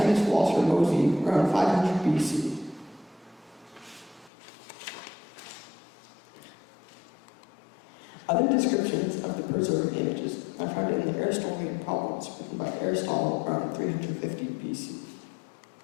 philosopher Mozi around 500 BC. Other descriptions of the preserved images are found in the Aristotelian Problems, written by Aristotle around 350 BC.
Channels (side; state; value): right; drops out; at 4.3 s